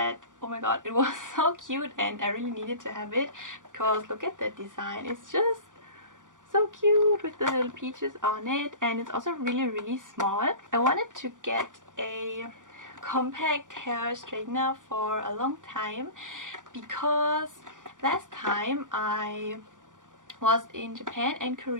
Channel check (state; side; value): late; left; 0.87 ms